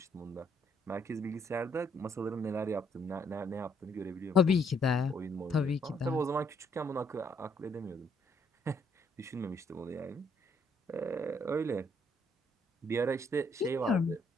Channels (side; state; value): both; normal; correlation 0.69